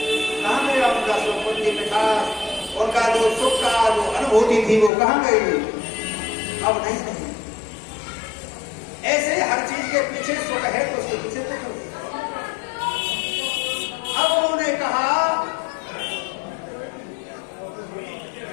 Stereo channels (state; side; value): drops out; right; at 4.9 s